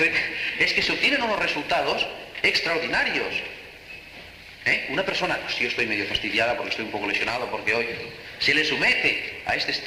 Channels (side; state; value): both; identical; correlation 1.00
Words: que se obtienen unos resultados extraordinarios. Una persona, si yo estoy medio fastidiada porque estoy un poco lesionado, porque hoy se le somete a este